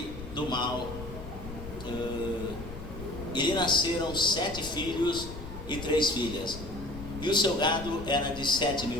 do mal. E lhe nasceram 7 filhos e 3 filhas. E o seu gado era de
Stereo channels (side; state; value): left; noise; rumble, 11 dB below the sound